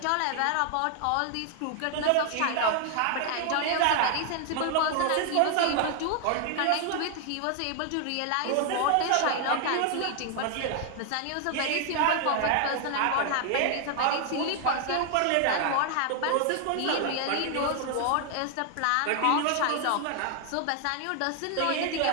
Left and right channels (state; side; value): different; both; correlation 0.00